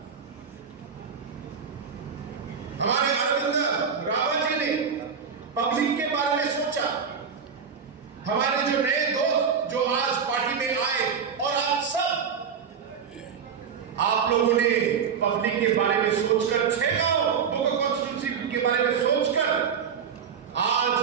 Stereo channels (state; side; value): quieter; left; 6.7 dB